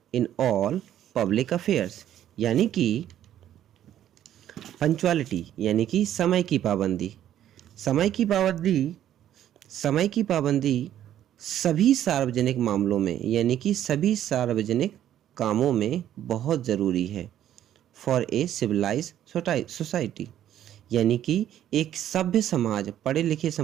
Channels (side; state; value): left; quieter; 11.3 dB